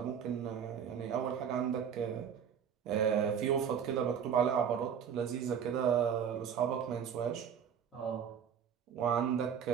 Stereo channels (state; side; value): quieter; left; 7.9 dB